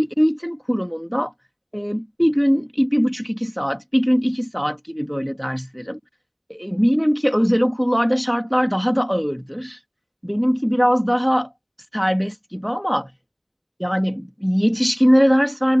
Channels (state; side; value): identical; both; correlation 1.00